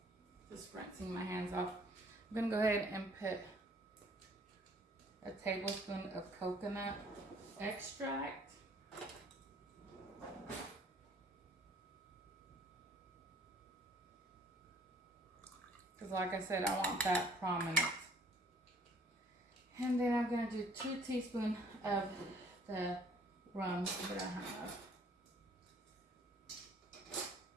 Just rinsing my hands off. I'm going to go ahead and put a tablespoon of coconut extract. Because like I said, I want that prominent. I'm gonna do 2 teaspoons of the rum that I have.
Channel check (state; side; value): normal; both; correlation 0.58